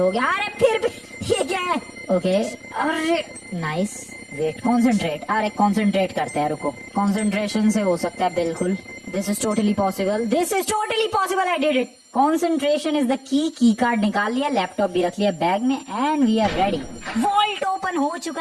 गया। अरे फिर भी ये क्या है? ओके अरे नाइस, वेट कॉन्सेंट्रेट। अरे कॉन्सेंट्रेट करते हैं, रुको। कॉन्सेंट्रेशन से हो सकता है बिल्कुल। This is totally possible, this is totally possible, I did it. Concentration is the key card निकाल लिया, लैपटॉप भी रख लिया बैग में, and we are ready. Vault open हो चुका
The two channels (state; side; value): identical; both; correlation 1.00